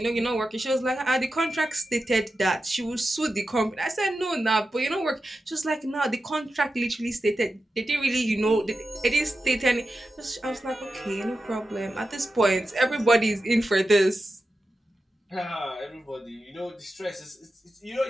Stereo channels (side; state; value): both; normal; correlation 0.91